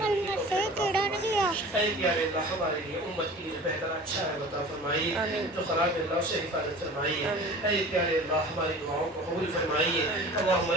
اے پیارے اللہ ہمارے لیے امت کے لیے بہتر اچھا ہے عطا فرمائیے. جو خراب ہے اللہ سے حفاظت فرمائیے. اے پیارے اللہ ہماری دعاؤں کو قبول فرمائیے. اللہم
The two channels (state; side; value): normal; both; correlation 0.40